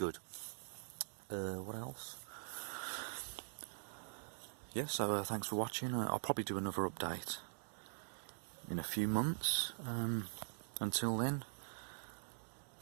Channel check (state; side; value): silent; left; digital silence